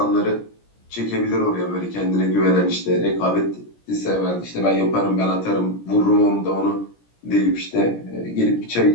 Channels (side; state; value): right; late; 17 ms